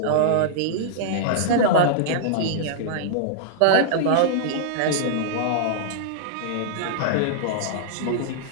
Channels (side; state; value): both; different; correlation -0.01